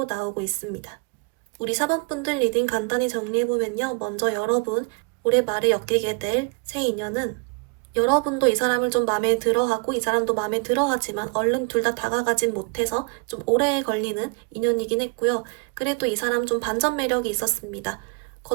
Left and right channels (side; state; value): left; quieter; 32.6 dB